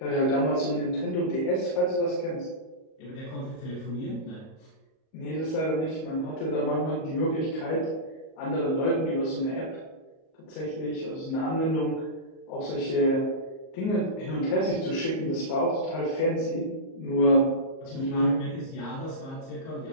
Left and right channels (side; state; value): right; late; 38 ms